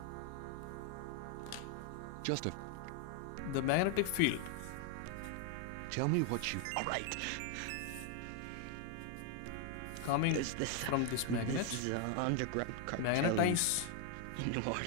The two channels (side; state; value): both; different; correlation 0.00